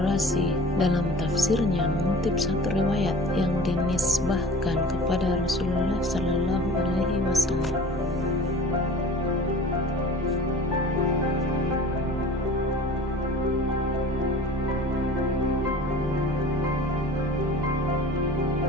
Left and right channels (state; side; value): normal; both; correlation 0.42